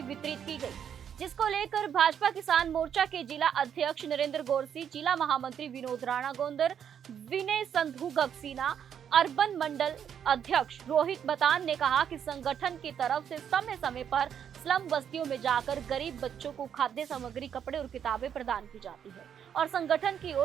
वितरित की गई, जिसको लेकर भाजपा किसान मोर्चा के जिला अध्यक्ष नरेंद्र गौरसी, जिला महामंत्री विनोद राणा गोंदर, विनय संधू गगसीना, अर्बन मंडल अध्यक्ष रोहित बतान ने कहा कि संगठन की तरफ से समय समय पर स्लम बस्तियों में जाकर गरीब बच्चों को खाद्य सामग्री, कपड़े और किताबें प्रदान की जाती है और संगठन की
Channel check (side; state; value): left; quieter; 8.5 dB